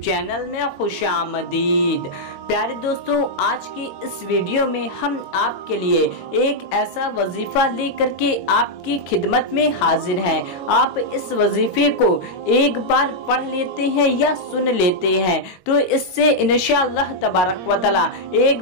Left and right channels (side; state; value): right; late; 22 ms